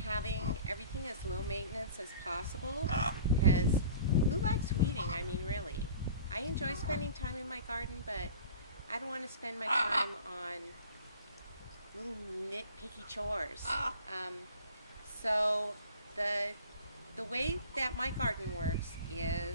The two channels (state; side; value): inverted; both; correlation -0.44